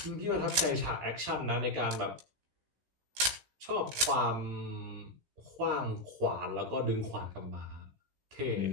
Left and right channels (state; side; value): late; left; 16 ms